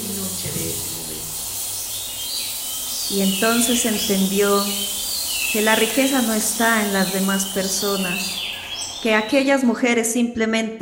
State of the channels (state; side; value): identical; both; correlation 1.00